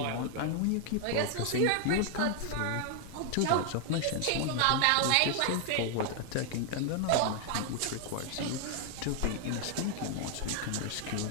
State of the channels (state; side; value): different; both; correlation 0.00